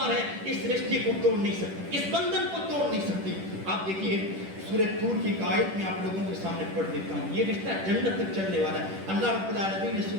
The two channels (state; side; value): late; left; 10 ms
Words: ہے اس رشتے کو توڑ نہیں سکتی، اس بندھن کو توڑ نہیں سکتی۔ آپ دیکھیے سورہ طور کی ایک آیت میں آپ لوگوں کے سامنے پڑھ دیتا ہوں، یہ رشتہ جنت تک چلنے والا ہے۔ اللہ رب العالمین نے